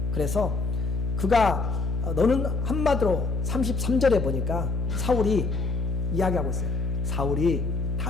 그래서 그가 너는 한마디로 33절에 보니까 사울이 이야기하고 있어요. 사울이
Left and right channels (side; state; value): left; noise; hum, 2 dB below the sound